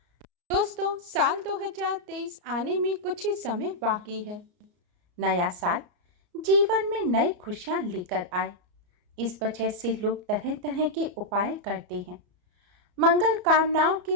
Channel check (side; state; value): left; late; 34 ms